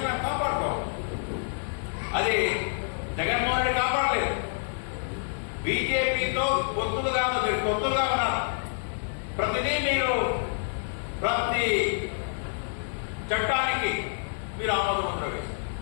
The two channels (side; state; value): right; silent; digital silence